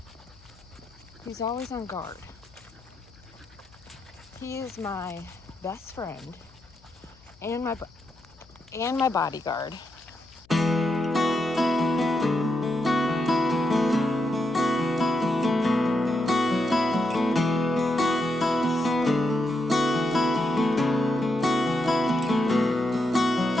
He's always on guard. He is my best friend and my bodyguard.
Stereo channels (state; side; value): noise; left; hum, 28 dB below the sound